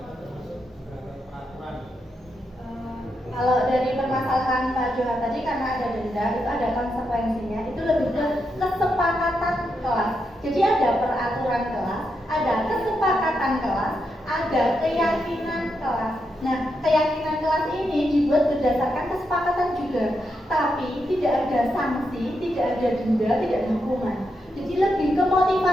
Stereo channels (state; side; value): normal; both; correlation 0.83